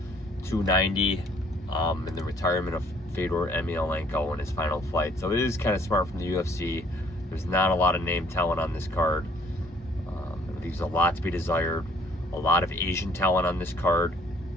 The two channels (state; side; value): normal; both; correlation 0.60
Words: 290 and the retirement of Fedor Emelianenko in his final fight. So it is kind of smart from the UFC. There's not a lot of name talent on this card. It leaves a lot to be desired. A lot of Asian talent on this card.